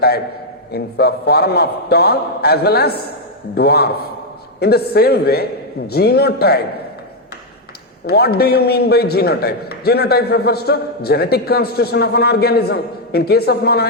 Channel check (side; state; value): both; normal; correlation 0.00